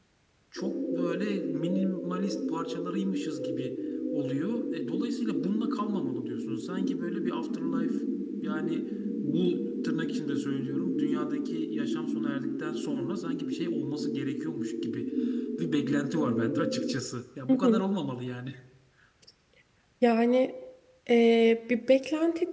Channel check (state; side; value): identical; both; correlation 1.00